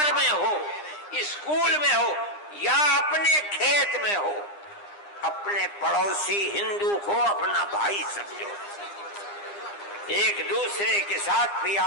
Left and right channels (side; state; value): right; late; 9.8 ms